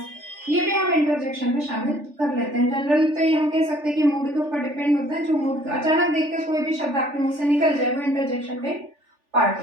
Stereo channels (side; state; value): left; late; 3.4 ms